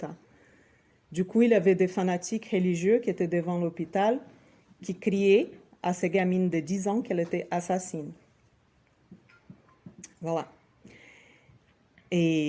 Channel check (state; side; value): identical; both; correlation 1.00